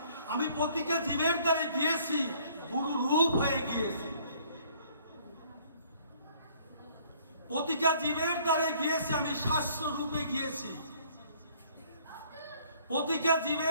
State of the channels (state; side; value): inverted; both; correlation -0.60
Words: আমি প্রতিটা জীবের দ্বারে গিয়েছি, গুরু রূপ হয়ে গিয়েছি। প্রতিটা জীবের দ্বারে গিয়েছি, আমি শাস্ত্র রূপে গিয়েছি। প্রতিটা